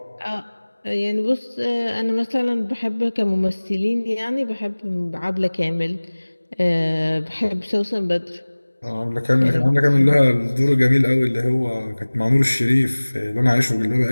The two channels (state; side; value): inverted; both; correlation -1.00